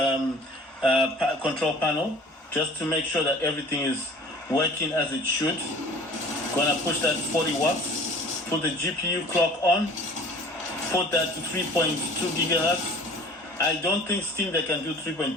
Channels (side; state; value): both; normal; correlation 0.47